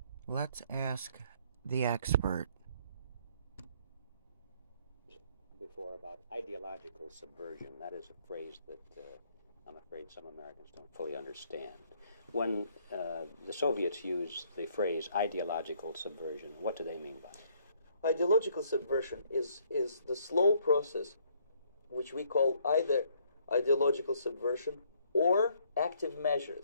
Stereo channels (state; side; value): inverted; both; correlation -0.65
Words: Let's ask the expert. Before about ideological subversion. That is a phrase that I'm afraid some Americans don't fully understand. When the Soviets used the phrase ideological subversion, what do they mean by it? Ideological subversion is the slow process which we call either ideological subversion or active